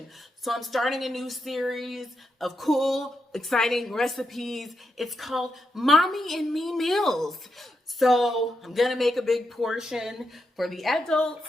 So I'm starting a new series of cool, exciting recipes. It's called Mommy and Me Meals. So I'm gonna make a big portion for the adults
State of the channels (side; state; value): both; normal; correlation 0.84